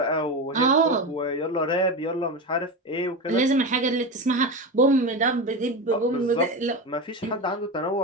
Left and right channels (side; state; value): both; normal; correlation 0.20